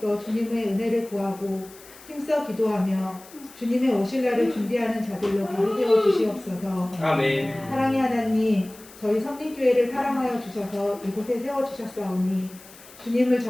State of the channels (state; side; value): noise; left; hiss, 21 dB below the sound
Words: 주님의 은혜를 구하고 힘써 기도하며 주님의 오실 날을 준비하는 자들로 바로 세워 주시옵소서. 아멘. 사랑의 하나님, 저희 성립교회를 사랑하여 주셔서 이곳에 세워주셨사오니 주님을